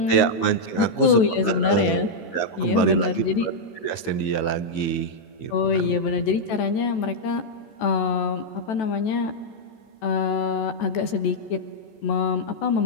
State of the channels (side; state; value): right; late; 14 ms